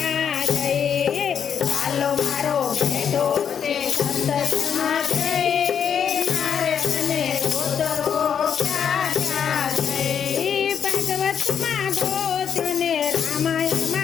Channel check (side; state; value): right; quieter; 7.9 dB